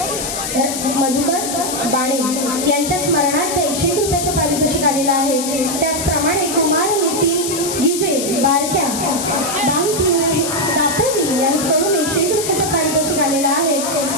बाणे यांच्या स्मरणार्थ 101 रुपयाचं पारितोषिक आलेलं आहे. त्याचप्रमाणे कुमार नितीन गिजे बारक्या दापोली यांच्याकडून 101 रुपयाचं पारितोषिक आलेलं आहे.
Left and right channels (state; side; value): noise; left; hiss, 4 dB below the sound